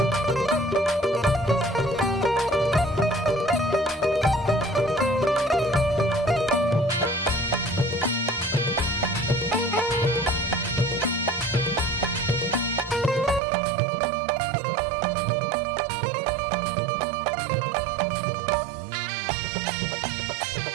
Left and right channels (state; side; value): drops out; left; at 13.4 s